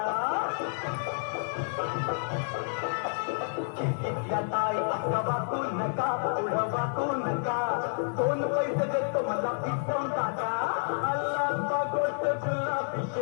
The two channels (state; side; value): silent; right; 58 dB below the other